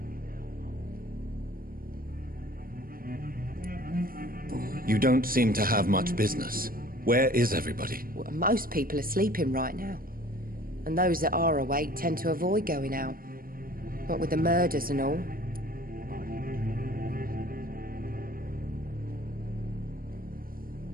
You don't seem to have much business. Where is everybody? Well, most people are sleeping right now. And those that are awake tend to avoid going out. What with the murders and all.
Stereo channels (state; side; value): late; left; 0.42 ms